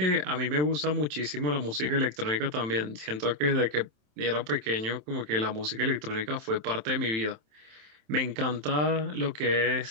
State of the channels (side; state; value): left; late; 27 ms